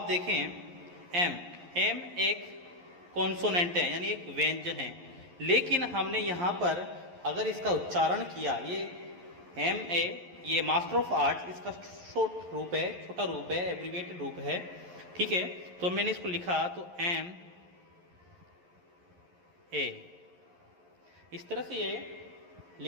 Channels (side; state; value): left; late; 11 ms